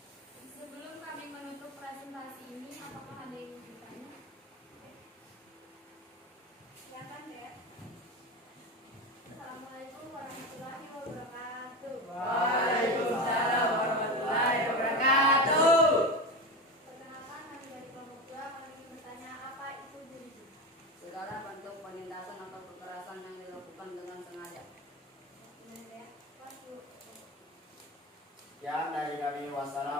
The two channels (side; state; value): both; normal; correlation 0.22